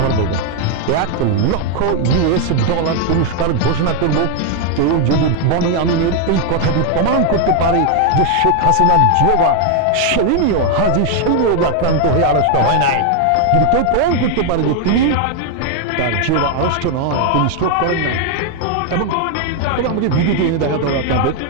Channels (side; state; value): both; different; correlation 0.00